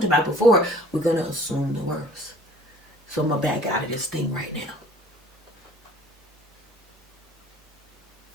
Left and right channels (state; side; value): normal; both; correlation 0.52